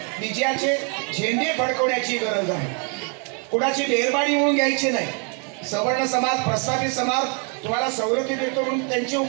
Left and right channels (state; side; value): quieter; left; 38.3 dB